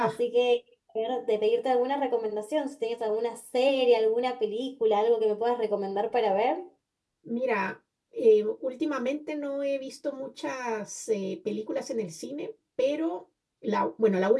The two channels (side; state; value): both; identical; correlation 1.00